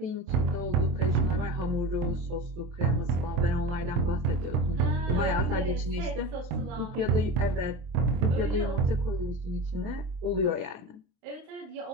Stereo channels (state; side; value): late; left; 24 ms